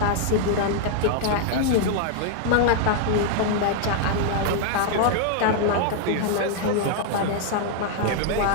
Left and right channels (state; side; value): different; both; correlation 0.00